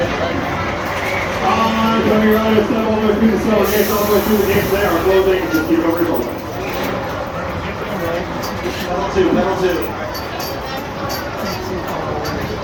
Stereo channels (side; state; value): both; identical; correlation 1.00